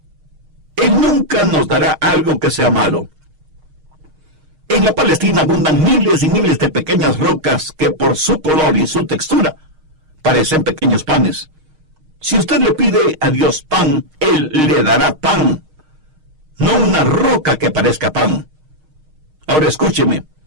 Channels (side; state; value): left; late; 6.4 ms